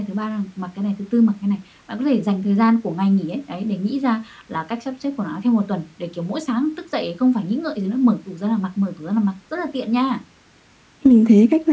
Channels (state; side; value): identical; both; correlation 1.00